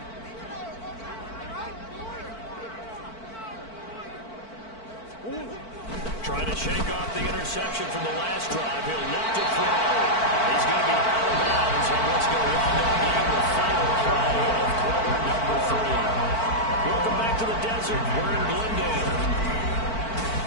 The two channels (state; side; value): late; right; 4.5 ms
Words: Trying to shake off the interception from the last drive. He'll look to throw. He's going to be out of bounds on what's going to wind up being the final play of quarter number 3. Welcome back to the desert. We're in Glendale.